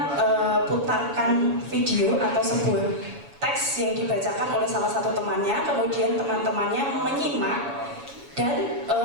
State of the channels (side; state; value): left; late; 7.1 ms